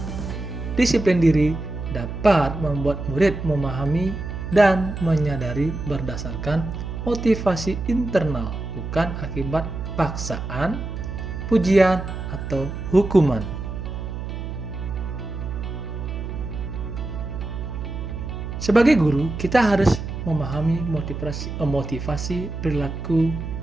Disiplin diri dapat membuat murid memahami dan menyadari berdasarkan motivasi internal, bukan akibat paksaan, pujian, atau hukuman. Sebagai guru, kita harus memahami motivasi perilaku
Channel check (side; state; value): right; noise; hum, 6 dB below the sound